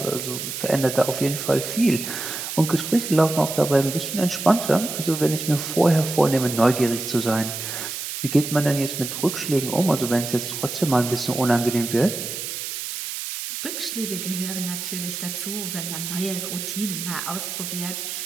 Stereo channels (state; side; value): noise; right; hiss, 6 dB below the sound